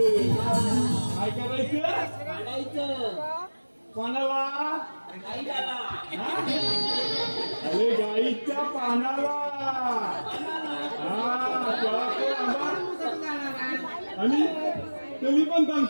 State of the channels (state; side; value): inverted; both; correlation -1.00